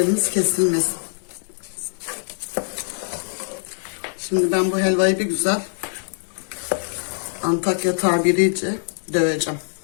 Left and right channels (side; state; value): right; silent; 63 dB below the other